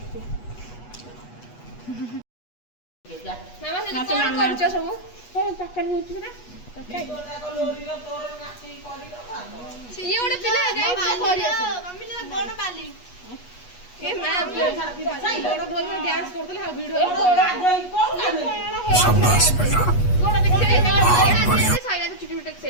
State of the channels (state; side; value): late; right; 8.3 ms